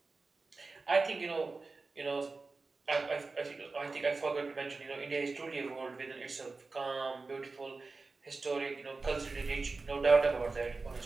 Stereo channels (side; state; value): left; quieter; 3.8 dB